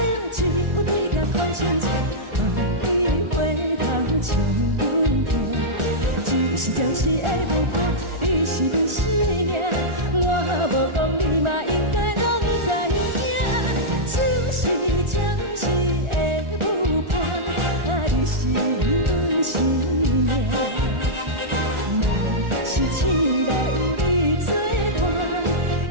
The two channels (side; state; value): left; late; 1.4 ms